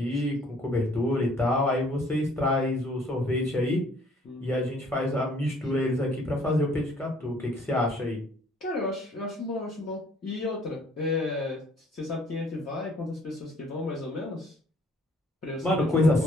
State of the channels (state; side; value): normal; both; correlation 0.60